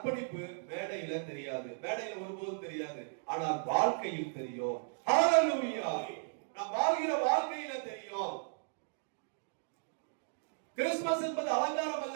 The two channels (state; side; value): silent; left; digital silence